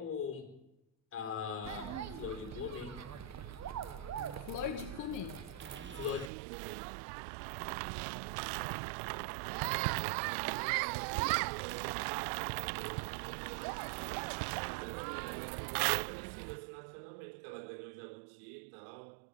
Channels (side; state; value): left; drops out; at 6.3 s